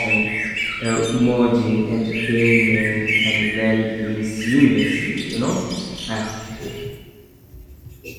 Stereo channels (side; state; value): both; identical; correlation 1.00